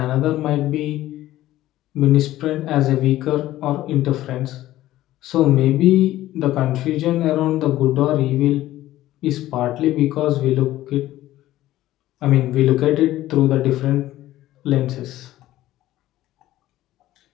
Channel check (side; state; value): right; quieter; 14.9 dB